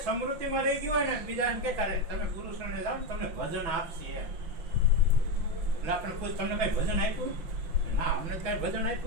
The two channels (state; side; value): late; left; 6.1 ms